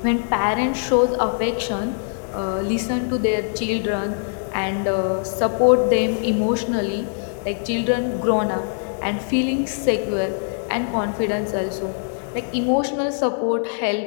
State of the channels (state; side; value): silent; right; digital silence